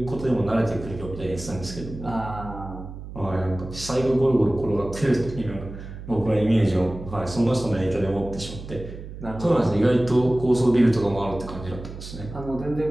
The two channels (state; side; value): noise; right; hum, 12 dB below the sound